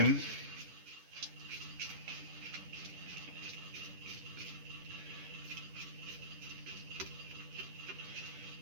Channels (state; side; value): late; left; 10 ms